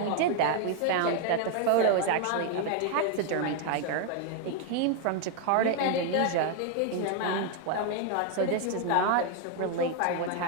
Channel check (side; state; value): both; different; correlation 0.00